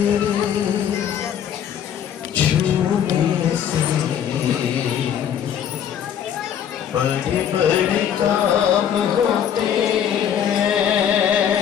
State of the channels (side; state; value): right; quieter; 9.1 dB